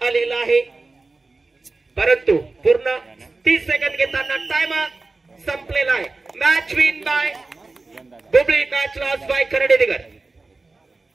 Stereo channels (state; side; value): quieter; left; 3.5 dB